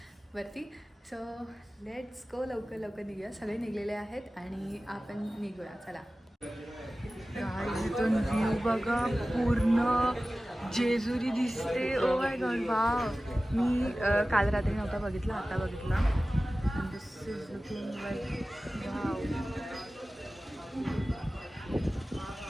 वरती. So let's go. लवकर लवकर निघूया. सगळे निघलेले आहेत आणि आपण निघूया. चला. इथून व्ह्यू बघा, पूर्ण जेजुरी दिसते. Oh my God, wow. मी काल रात्री नव्हता बघितला, आता बघितला. And this is looking like wow.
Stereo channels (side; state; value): both; normal; correlation 0.96